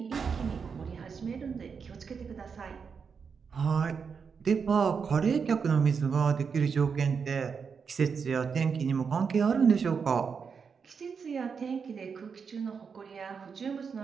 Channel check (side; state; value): left; quieter; 6.0 dB